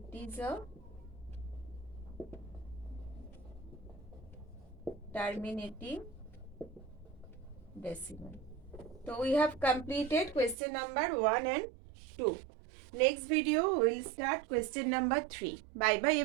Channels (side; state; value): left; drops out; at 10.6 s